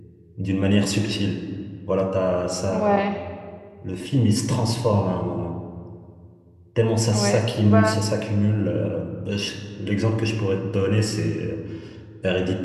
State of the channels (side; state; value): both; identical; correlation 1.00